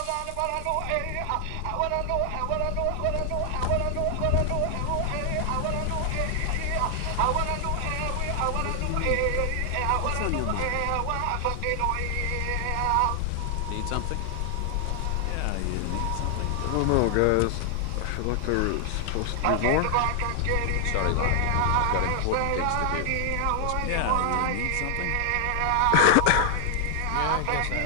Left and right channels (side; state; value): both; different; correlation 0.00